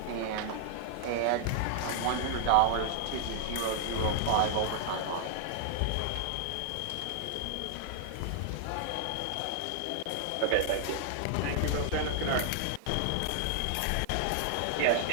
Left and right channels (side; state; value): both; different; correlation 0.00